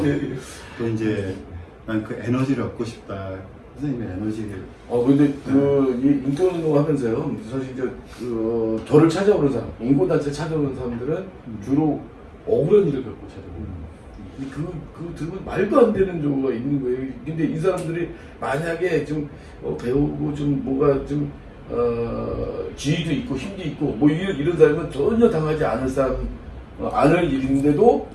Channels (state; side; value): identical; both; correlation 1.00